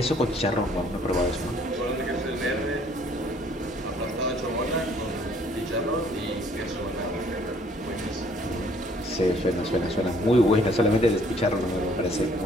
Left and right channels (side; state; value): both; normal; correlation 0.61